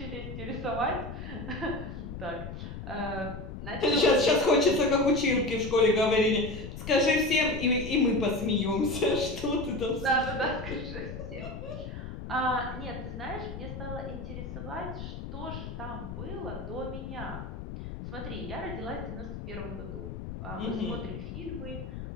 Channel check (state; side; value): noise; left; rumble, 8 dB below the sound